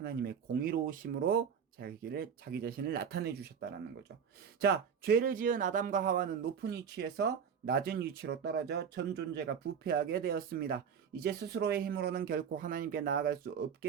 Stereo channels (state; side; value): quieter; left; 7.2 dB